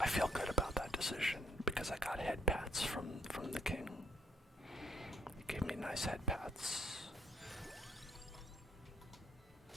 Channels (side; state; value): both; normal; correlation 0.68